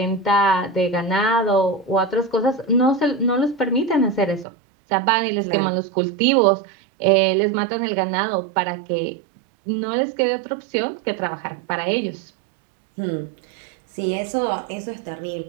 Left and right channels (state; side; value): drops out; left; at 4.5 s